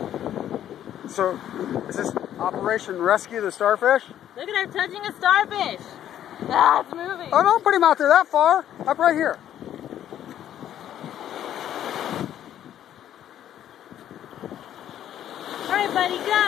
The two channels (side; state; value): right; quieter; 11.0 dB